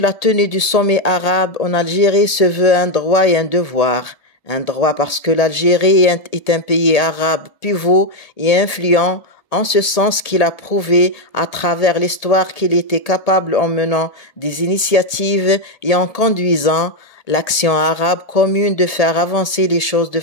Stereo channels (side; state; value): right; late; 1.8 ms